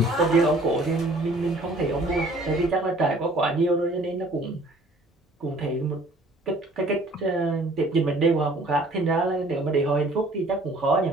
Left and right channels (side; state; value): both; normal; correlation 0.55